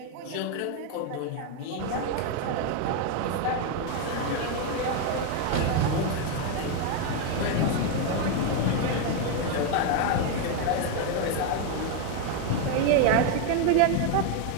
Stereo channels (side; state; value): both; different; correlation 0.01